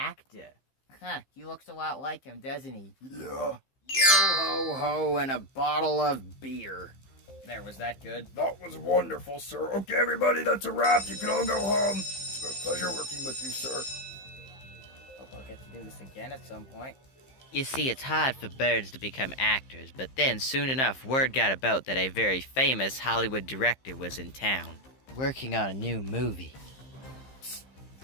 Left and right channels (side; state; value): right; late; 15 ms